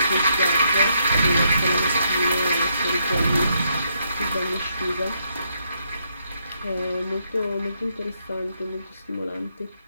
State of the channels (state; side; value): inverted; both; correlation -0.76